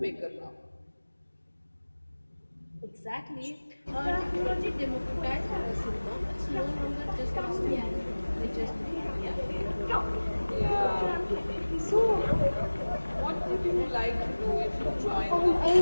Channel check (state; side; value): inverted; both; correlation -1.00